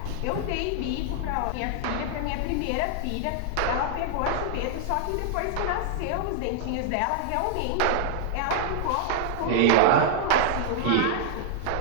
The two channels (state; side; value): different; both; correlation 0.00